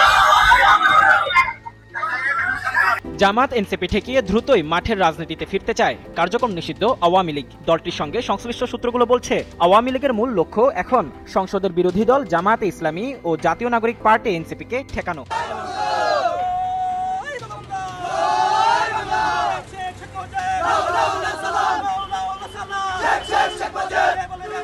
জামাত এনসিপি ঠেকিয়ে দ্রুতই মাঠের রাজনীতিতে ফিরতে চায় কার্যক্রম নিষিদ্ধ আওয়ামী লীগ। দলটির সঙ্গে সংশ্লিষ্ট সূত্রগুলো বলছে, আওয়ামী লীগের মূল লক্ষ্য এখন সংসদের বিরোধী দল জামায়াতে ইসলামী ও জাতীয় নাগরিক পার্টি এনসিপিকে ঠেকানো।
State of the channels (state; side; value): identical; both; correlation 1.00